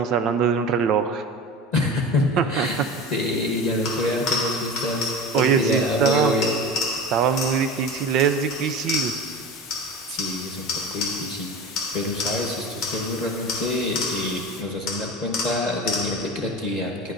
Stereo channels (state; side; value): normal; both; correlation 0.31